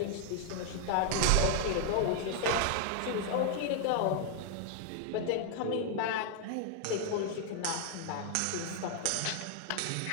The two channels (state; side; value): different; both; correlation 0.00